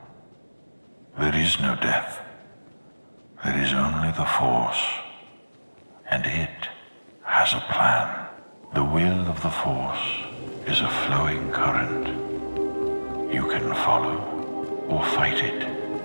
There is no death. There is only the Force. And it has a plan. The will of the Force is a flowing current. You can follow or fight it,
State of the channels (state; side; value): inverted; both; correlation -1.00